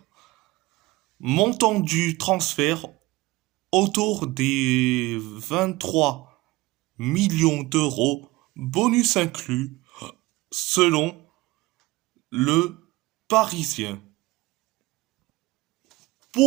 Montant du transfert autour des 23 millions d'euros, bonus inclus, selon le Parisien.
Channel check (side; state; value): left; quieter; 20.0 dB